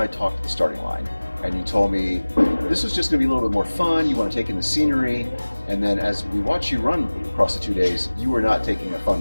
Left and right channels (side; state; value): both; inverted; correlation -1.00